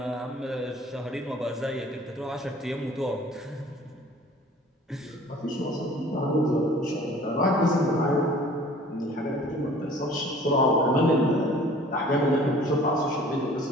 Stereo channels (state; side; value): normal; both; correlation 0.49